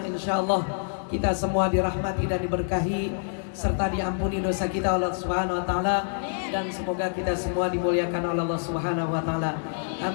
insyaallah kita semua dirahmati dan diberkahi serta diampuni dosa kita oleh Allah Subhanahu wa taala, dan semoga kita semua dimuliakan oleh Allah Subhanahu wa taala.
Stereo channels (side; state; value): right; silent; digital silence